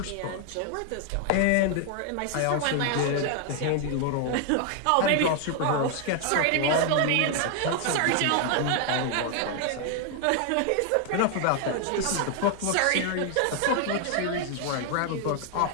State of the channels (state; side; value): different; both; correlation 0.00